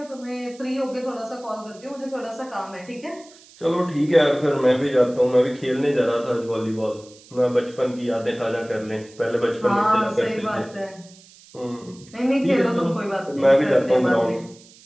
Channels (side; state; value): right; noise; hiss, 24 dB below the sound